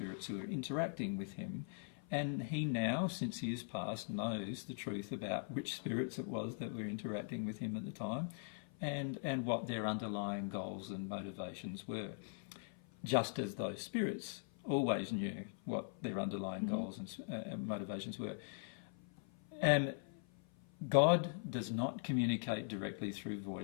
who were interacting with him. And he now, since he has passed, knows the truth about which spirits it was that were interacting with him at the time and what their underlying goals and motivations were. Just as those spirits always knew what their underlying goals and motivations were. And God does not communicate directly through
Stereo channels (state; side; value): silent; right; 50 dB below the other